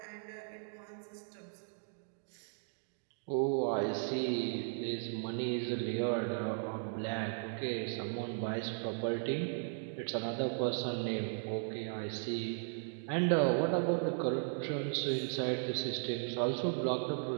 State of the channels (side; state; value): left; silent; digital silence